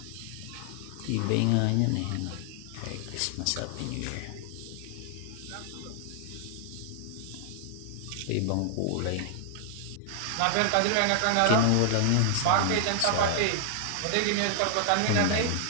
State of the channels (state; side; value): different; both; correlation 0.00